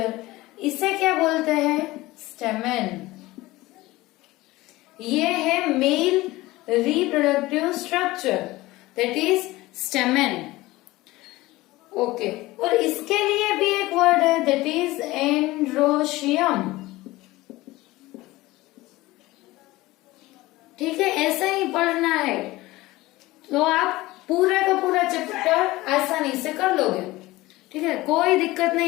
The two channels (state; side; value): quieter; right; 19.0 dB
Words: इसे क्या बोलते हैं, स्टेमेन। ये है male reproductive structure, that is stamen. Okay, और इसके लिए भी एक वर्ड है, दैट इज एंड्रोशियम। ठीक है, ऐसा ही पढ़ना है तो आप पूरा का पूरा चैप्टर आसानी से कर लोगे। ठीक है, कोई दिक्कत